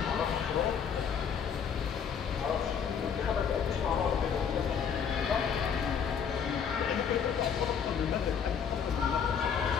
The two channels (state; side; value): quieter; right; 7.3 dB